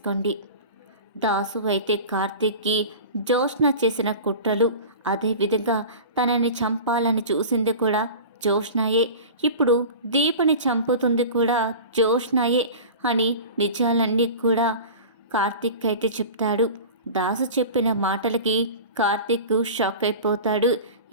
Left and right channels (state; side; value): inverted; both; correlation -0.35